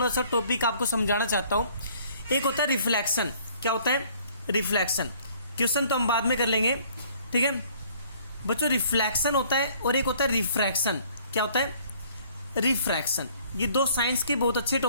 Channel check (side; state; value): both; inverted; correlation -0.58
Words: सा टॉपिक आपको समझाना चाहता हूँ। एक होता है रिफ्लेक्शन, क्या होता है, रिफ्लेक्शन, क्वेश्चन तो हम बाद में कर लेंगे, ठीक है बच्चों। रिफ्लेक्शन होता है और एक होता है रिफ्रैक्शन, क्या होता है, रिफ्रैक्शन। ये दो साइंस के बहुत अच्छे